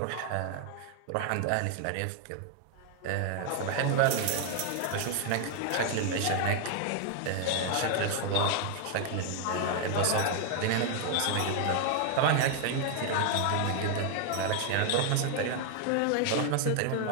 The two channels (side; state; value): both; different; correlation 0.00